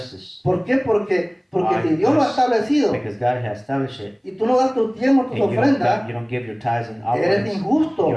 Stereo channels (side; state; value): both; identical; correlation 1.00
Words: ¿Por qué? Porque Why? si Dios lo ha establecido Because God has established it, y tú no das tus diezmos, tus and ofrendas, you don't give your tithes and eres offerings, injusto. you